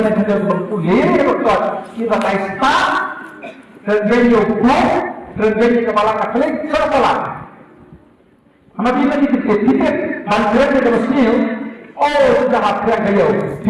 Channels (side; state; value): both; identical; correlation 1.00